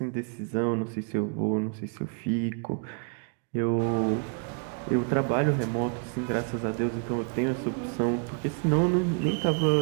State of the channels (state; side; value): quieter; left; 39.9 dB